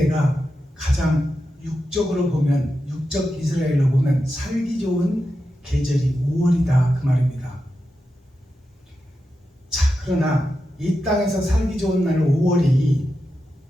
가장 육적으로 보면, 육적 이스라엘로 보면 살기 좋은 계절이 5월이다 그 말입니다. 자, 그러나 이 땅에서 살기 좋은 날 5월이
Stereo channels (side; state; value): both; normal; correlation 0.89